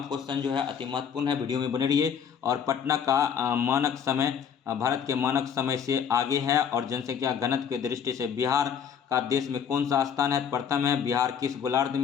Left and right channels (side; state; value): right; quieter; 7.6 dB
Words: क्वेश्चन जो है अति महत्वपूर्ण है, वीडियो में बने रहिए। और पटना का मानक समय भारत के मानक समय से आगे है। और जनसंख्या घनत्व की दृष्टि से बिहार का देश में कौन सा स्थान है? प्रथम है। बिहार किस गोलार्ध